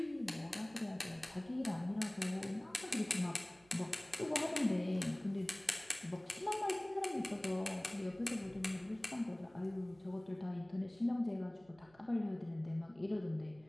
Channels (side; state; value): right; noise; hum, 28 dB below the sound